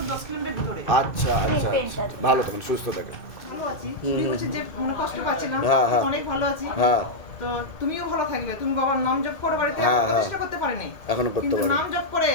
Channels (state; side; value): late; right; 2.2 ms